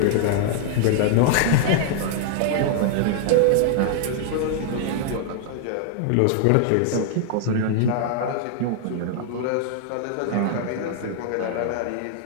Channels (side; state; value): both; different; correlation -0.01